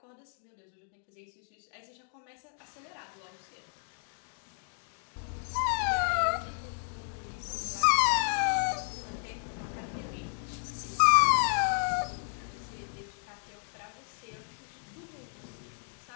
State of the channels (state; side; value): silent; right; 56 dB below the other